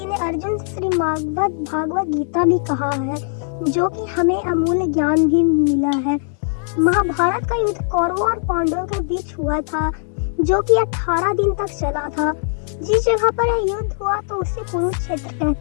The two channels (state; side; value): silent; right; digital silence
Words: ने अर्जुन से श्रीमद् भागवत गीता भी कहा है, जो कि हमें अमूल्य ज्ञान भी मिला है। महाभारत का युद्ध कौरवों और पांडवों के बीच हुआ था, जो कि 18 दिन तक चला था। जिस जगह पर यह युद्ध हुआ तो उसे कुरुक्षेत्र